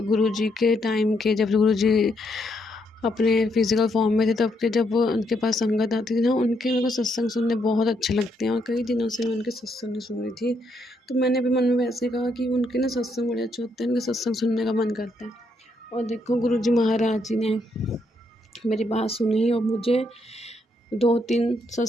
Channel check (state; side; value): normal; both; correlation 0.76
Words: गुरु जी के टाइम के, जब गुरु जी अपने फिज़िकल फॉर्म में थे तब के, जब उनके पास संगत आती थी ना, उनके मेरे को सत्संग सुनने बहुत अच्छे लगते हैं और कई दिनों से मैं उनके सत्संग नहीं सुन रही थी। तो मैंने भी मन में वैसे कहा कि उनके ना सत्संग बड़े अच्छे होते हैं, उनके सत्संग सुनने का मन करता है। और देखो गुरुजी महाराज जी ने मेरी बात सुनी और मुझे 2-3